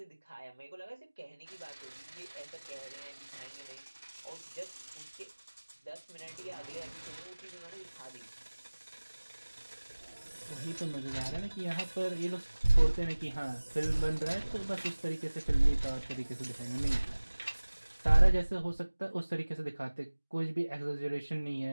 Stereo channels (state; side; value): inverted; both; correlation -1.00